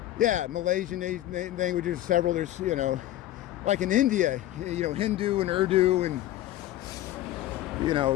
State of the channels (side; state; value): right; quieter; 14.2 dB